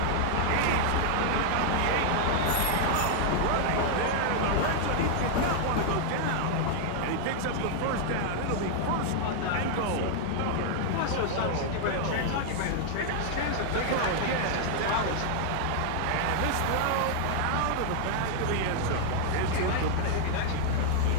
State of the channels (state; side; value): different; both; correlation 0.00